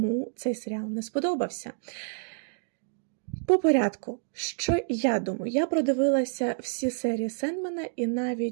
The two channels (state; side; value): silent; left; digital silence